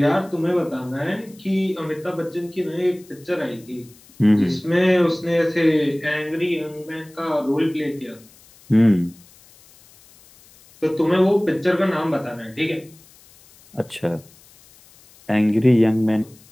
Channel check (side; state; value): left; noise; hiss, 26 dB below the sound